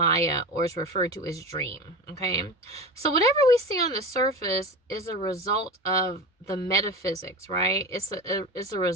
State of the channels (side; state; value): both; normal; correlation 0.27